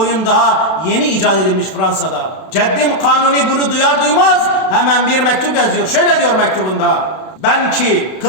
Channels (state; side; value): late; right; 32 ms